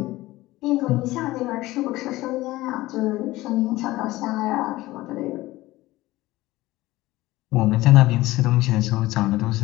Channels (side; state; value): right; quieter; 18.0 dB